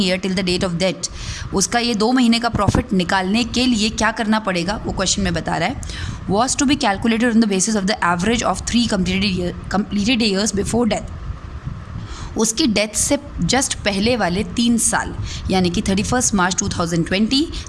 year till the date of death. उसका ये 2 महीने का प्रॉफिट निकालने के लिए क्या करना पड़ेगा वो क्वेश्चन में बता रहा है. Was to be calculated on the basis of the average of 3 completed years before death. उसकी डेथ से जस्ट पहले वाले 3 साल, यानी कि 31 मार्च 2020,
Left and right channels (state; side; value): identical; both; correlation 1.00